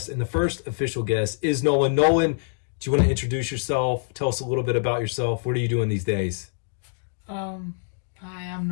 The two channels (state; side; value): silent; right; digital silence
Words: and the first official guest is Nolan. Nolan, do you want to introduce yourself? Tell us a little bit about yourself. What are you doing these days? Hi, I'm